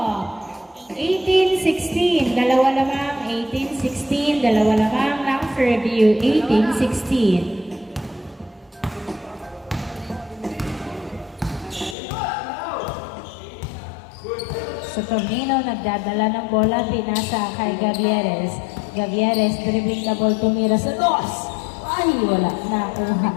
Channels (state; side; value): drops out; right; at 12.0 s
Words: 18-16, dalawa lamang. 18-16, dalawa lamang ng Fairview. 18-16. Saturnino, nagdadala ng bola, pinasa kay Gavieres. Gavieres, dribbling the ball, tumira sa dos. Ay, wala.